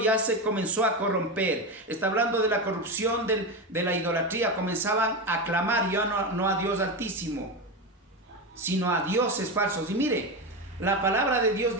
se comenzó a corromper. Está hablando de la corrupción de la idolatría. Comenzaban a clamar ya no a Dios Altísimo, sino a dioses falsos. Y mire, la palabra de Dios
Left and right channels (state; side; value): normal; both; correlation 0.17